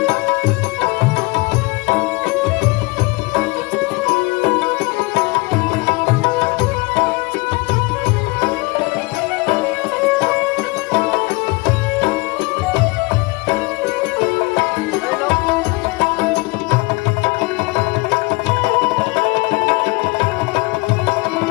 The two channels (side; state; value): right; quieter; 25.6 dB